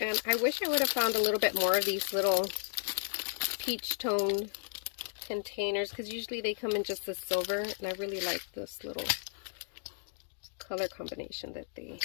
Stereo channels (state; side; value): silent; right; digital silence